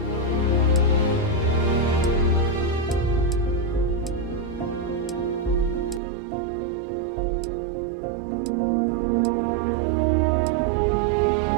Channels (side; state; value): left; drops out; at 6.0 s